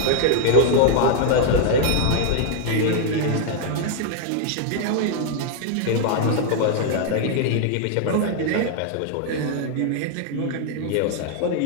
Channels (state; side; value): different; both; correlation 0.00